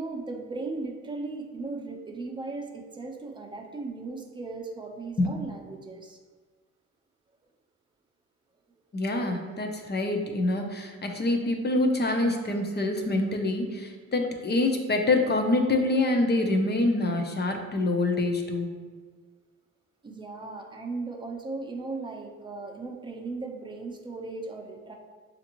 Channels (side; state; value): both; normal; correlation 0.46